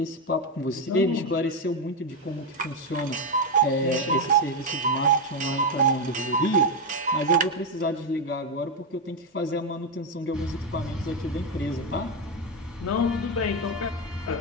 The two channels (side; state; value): both; normal; correlation 0.07